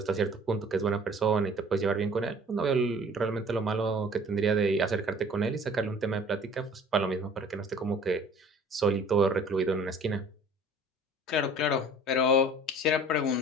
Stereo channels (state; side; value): normal; both; correlation 0.49